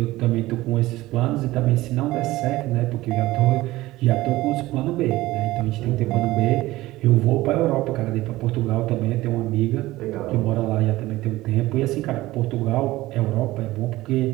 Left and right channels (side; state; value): left; quieter; 17.8 dB